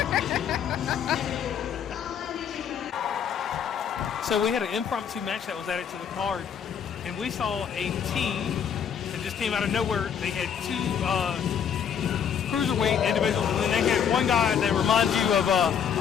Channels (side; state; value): right; quieter; 7.9 dB